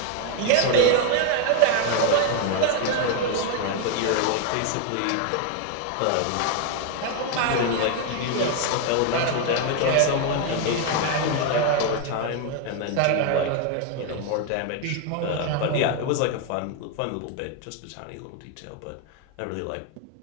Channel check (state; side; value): different; both; correlation 0.01